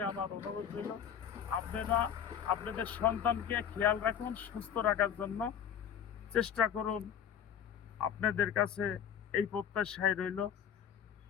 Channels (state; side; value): quieter; right; 8.6 dB